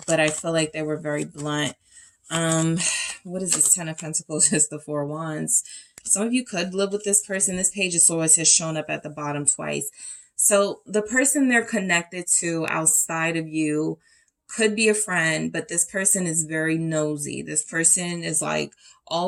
I feel like they were very blunt. What is this Ten of Pentacles? It's the Four of Wands. Some of you could live with this person. This Page of Swords has shown up at the bottom twice. So the person they're connected to outside of you could be a friend, but this person is very nosy. This person is like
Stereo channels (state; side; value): identical; both; correlation 1.00